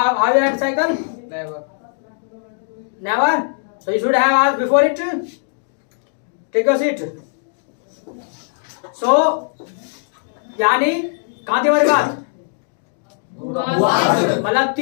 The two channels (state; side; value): silent; right; digital silence